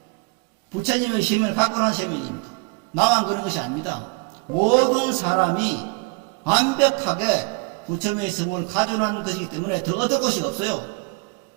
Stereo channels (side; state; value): left; quieter; 31.5 dB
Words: 부처님의 생명을 갖고 난 생명입니다. 나만 그런 것이 아닙니다. 모든 사람이 완벽하게 부처님의 성을 가져난 것이기 때문에 더 얻을 것이 없어요.